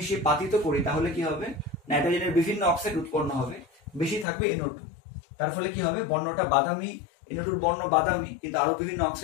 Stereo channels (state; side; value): drops out; right; at 4.2 s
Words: পাতিত করি তাহলে কি হবে, নাইট্রোজেনের বিভিন্ন অক্সাইড উৎপন্ন হবে, বেশি থাকবে NO2। তার ফলে কি হবে, বর্ণটা বাদামি, NO2 বর্ণ বাদামি, কিন্তু আরো বিভিন্ন